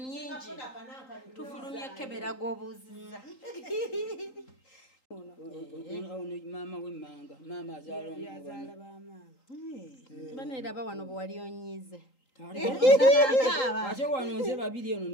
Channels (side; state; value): right; late; 3.8 ms